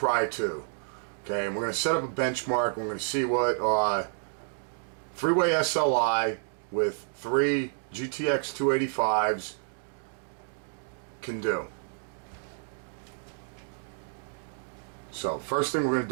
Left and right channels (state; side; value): silent; left; digital silence